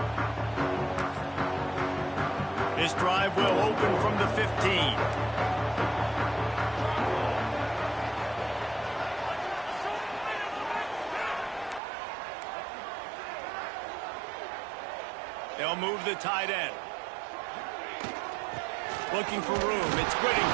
This drive will open from the 15. They'll move the tight end. Looking for room. It's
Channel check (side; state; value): left; drops out; at 11.8 s